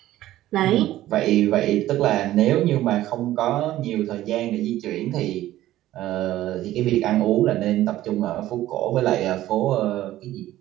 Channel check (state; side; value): quieter; left; 14.5 dB